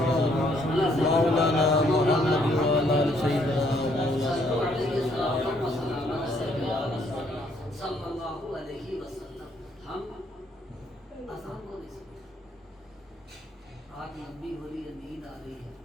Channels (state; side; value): normal; both; correlation 0.68